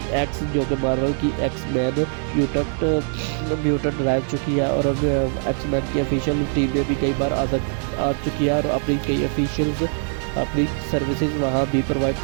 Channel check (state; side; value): silent; left; 55 dB below the other